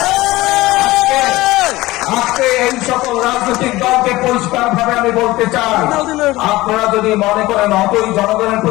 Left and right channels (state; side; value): quieter; right; 18.7 dB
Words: আজকে এই সকল রাজনৈতিক দলকে পরিষ্কার ভাবে আমি বলতে চাই, আপনারা যদি মনে করেন অতই জনগণের